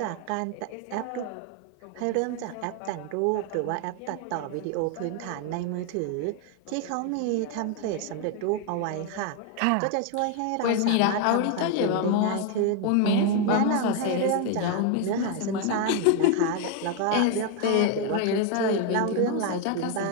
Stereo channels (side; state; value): both; different; correlation 0.01